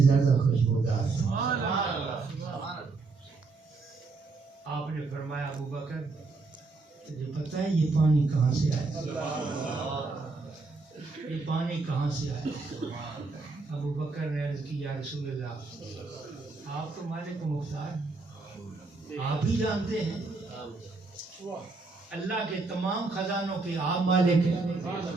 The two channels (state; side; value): quieter; left; 3.9 dB